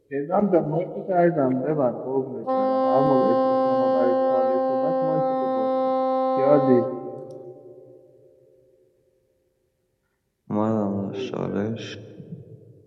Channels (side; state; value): both; identical; correlation 1.00